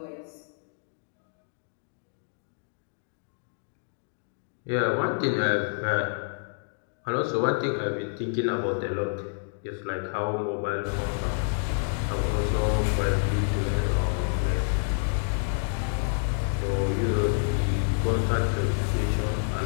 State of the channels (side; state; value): right; silent; digital silence